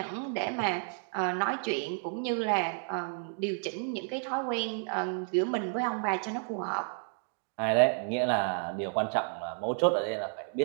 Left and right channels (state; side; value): silent; left; 57 dB below the other